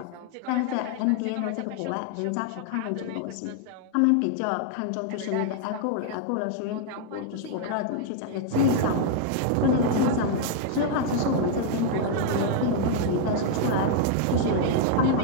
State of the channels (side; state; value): both; different; correlation 0.00